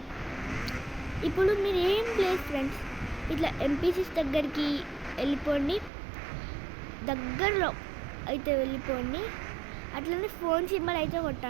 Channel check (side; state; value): left; drops out; at 5.9 s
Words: ఇప్పుడు మీరు ఏం ప్లేస్ ఫ్రెండ్స్, ఇట్లా ఎంపీసీస్ దగ్గరికి వెళ్ళిపోండి, దగ్గరలో అయితే వెళ్ళిపోండి. అట్లనే ఫోన్ సింబల్ అయితే